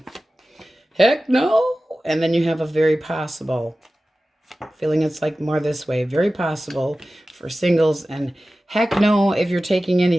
Heck no. And then you have a very possible. Feeling it's like more this way. Very possible for singles. And heck no if you're taking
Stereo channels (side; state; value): both; normal; correlation 0.96